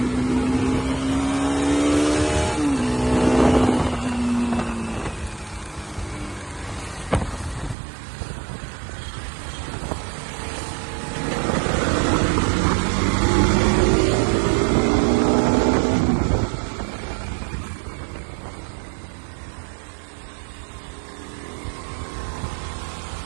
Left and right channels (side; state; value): left; drops out; at 7.8 s